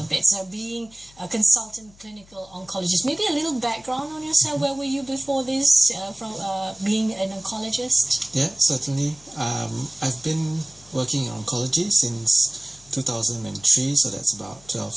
bit. So being a consultant clinical oncologist, maybe a little background on yourself. Where were you before this, from being an oncologist? Yeah, certainly. I've been working in oncology since 2003, so that's about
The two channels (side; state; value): left; noise; hum, 26 dB below the sound